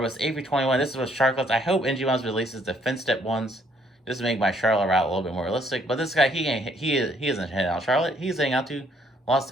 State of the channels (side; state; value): both; normal; correlation 0.66